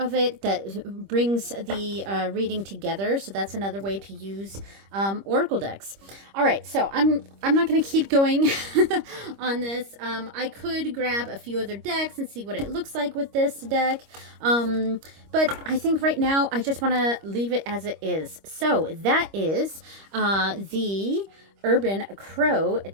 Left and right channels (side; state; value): left; late; 25 ms